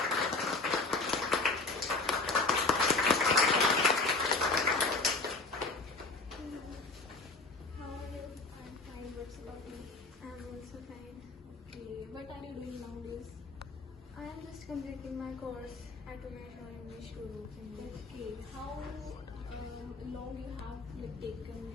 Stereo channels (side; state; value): right; quieter; 3.6 dB